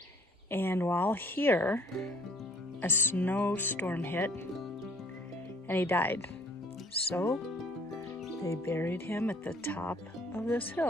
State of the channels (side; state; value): both; normal; correlation 0.57